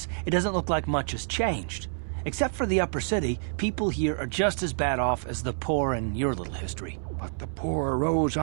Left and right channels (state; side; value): silent; left; 59 dB below the other